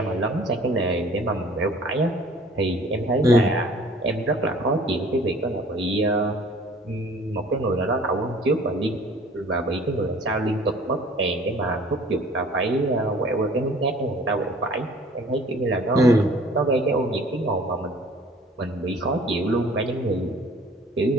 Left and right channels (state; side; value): normal; both; correlation 0.51